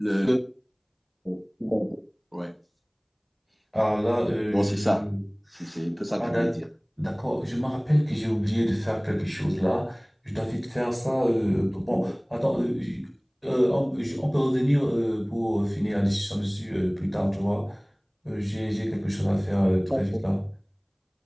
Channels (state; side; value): identical; both; correlation 1.00